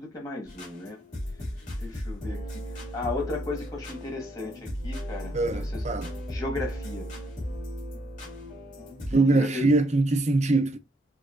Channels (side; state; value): both; normal; correlation 0.72